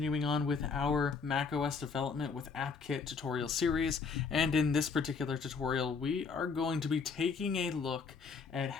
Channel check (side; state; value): right; quieter; 5.2 dB